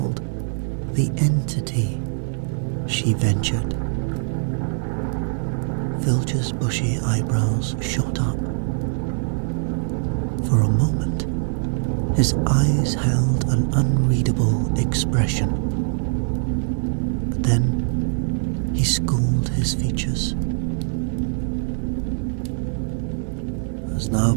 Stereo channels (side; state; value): left; silent; 64 dB below the other